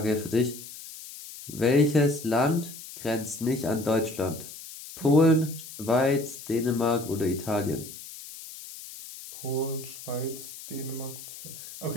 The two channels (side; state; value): left; noise; hiss, 14 dB below the sound